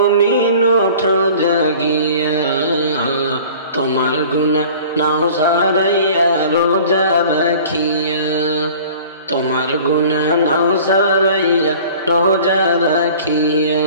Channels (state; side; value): inverted; both; correlation -0.45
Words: ওঠো জাগিয়া, তোমার গুনাহ নাও সারাইয়া রোজা রাখিয়া, তোমার গুনাহ নাও সারাইয়া রোজা রাখিয়া।